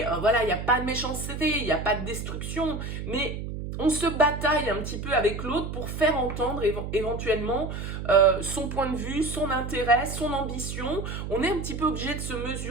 voilà, il n'y a pas de méchanceté, il n'y a pas de destruction, mais on se bataille un petit peu avec l'autre pour faire entendre éventuellement son point de vue, son intérêt, son ambition. On est un petit peu obligé de se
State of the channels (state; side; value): noise; right; hum, 6 dB below the sound